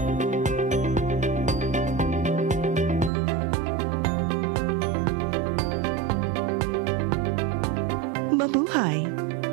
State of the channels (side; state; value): left; drops out; at 3.1 s